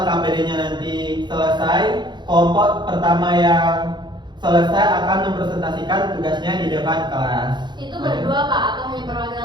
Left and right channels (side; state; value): left; late; 0.22 ms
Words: LKPD-nya nanti selesai, kelompok pertama yang selesai akan mempresentasikan tugasnya di depan kelas. Itu berdua, Pak, atau hanya